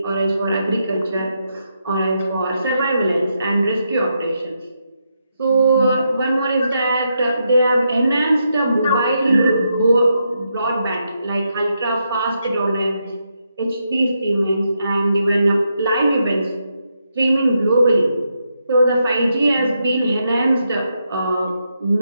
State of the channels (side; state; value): both; inverted; correlation -0.82